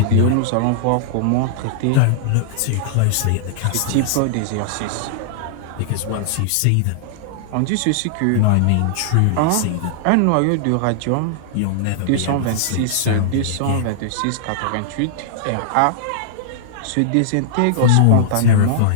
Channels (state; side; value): different; both; correlation -0.01